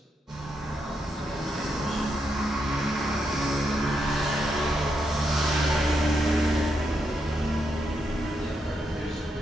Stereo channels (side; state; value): both; normal; correlation 0.81